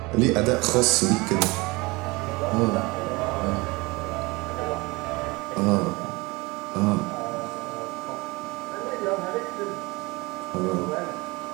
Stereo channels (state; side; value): quieter; left; 24.0 dB